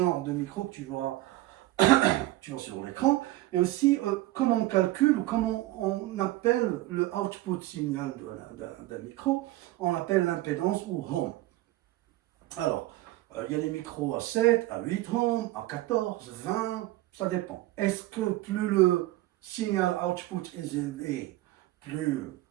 de micro que tu vois sur l'écran, et aussi comment on calcule ou comment on appelle le output signal d'un micro, on appelle l'impédance ou ohm. Alors, il y a des micros à 7, à 8 ohms, à 14, 20, ça dépend. Est-ce que plus le signal output est élevé, plus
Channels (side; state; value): left; quieter; 17.1 dB